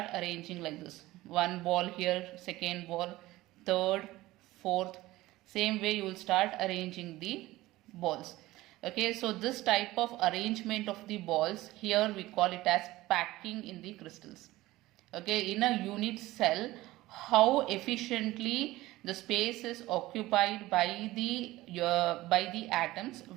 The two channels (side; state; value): left; quieter; 17.8 dB